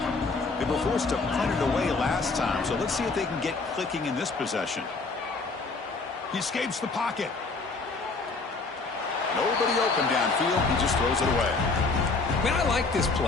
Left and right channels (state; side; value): quieter; right; 3.9 dB